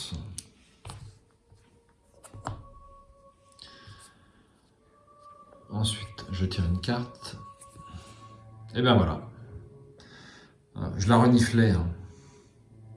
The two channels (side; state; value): both; identical; correlation 1.00